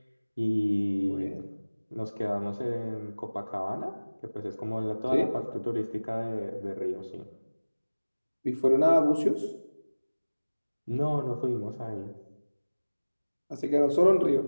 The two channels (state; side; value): inverted; both; correlation -1.00